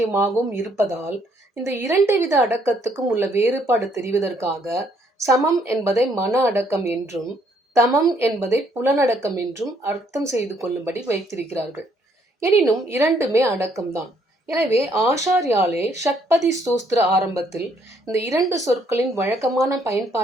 இருப்பதால், இந்த இரண்டு வித அடக்கத்துக்கும் உள்ள வேறுபாடு தெரிவதற்காக சமம் என்பதை மன அடக்கம் என்றும் தமம் என்பதை புலனடக்கம் என்றும் அர்த்தம் செய்து கொள்ளும்படி வைத்திருக்கிறார்கள். எனினும் இரண்டுமே அடக்கம்தான். எனவே ஆச்சாரியாலே ஷட்பதி ஸ்தோத்திர ஆரம்பத்தில் இந்த இரண்டு சொற்களின் வழக்கமான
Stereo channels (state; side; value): normal; both; correlation 0.68